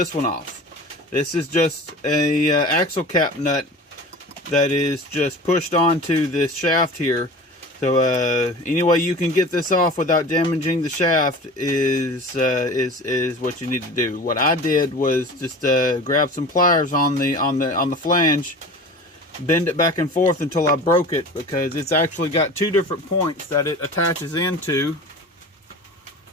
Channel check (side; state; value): both; normal; correlation 0.37